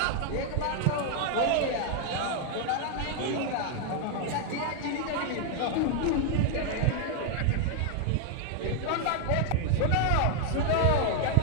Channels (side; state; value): both; different; correlation 0.00